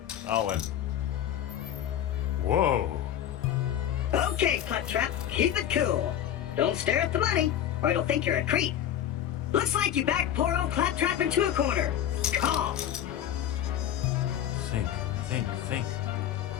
Owen. Whoa. Okay, Claptrap, keep it cool. Don't stare at the money, or it'll think you're a creep. Looks like you backed poor old Claptrap into a corner. Call. Think.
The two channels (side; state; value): right; quieter; 10.6 dB